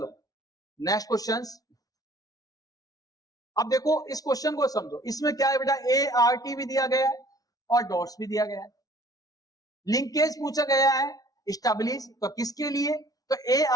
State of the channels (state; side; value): late; right; 0.18 ms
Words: नेक्स्ट क्वेश्चन। अब देखो इस क्वेश्चन को समझो, इसमें क्या है बेटा? ART भी दिया गया है और डॉट्स भी दिया गया है। लिंकेज पूछा गया है, स्टेबलिश, तो किसके लिए? तो